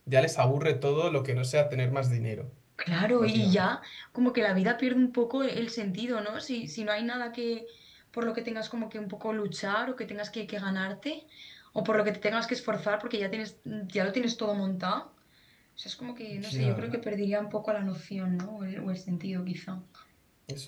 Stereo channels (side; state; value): both; identical; correlation 1.00